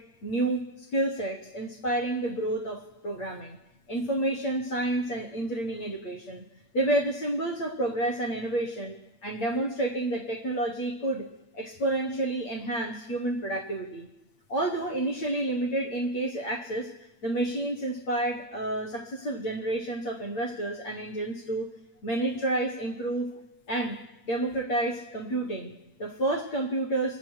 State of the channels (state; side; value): late; right; 8.7 ms